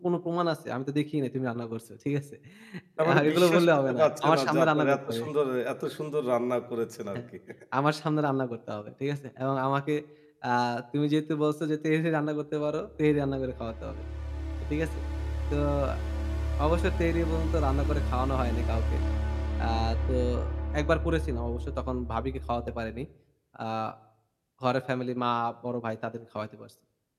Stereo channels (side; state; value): both; identical; correlation 1.00